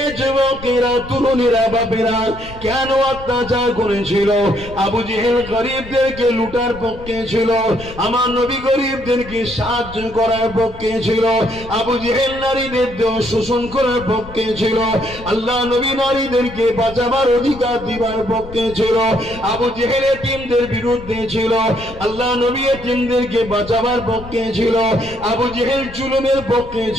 যুবকেরা, তরুণেরা, বাপেরা কেন অত্যাচার করেছিল? আবু জেহেল গরিবদেরকে লুটার পক্ষে ছিল, আমার নবী গরিবদেরকে সাহায্য করার পক্ষে ছিল। আবু জেহেল নারীদের দেহ শোষণ করার পক্ষে ছিল, আল্লাহ নবী নারীদেরকে বাঁচাবার অধিকার দিবার পক্ষে ছিল। আবু জেহেল এতিমদের বিরুদ্ধে ছিল, আল্লাহ নবী এতিমদেরকে বাঁচাবার পক্ষে ছিল। আবু জেহেল জুলুমের পক্ষে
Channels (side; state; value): left; noise; rumble, 16 dB below the sound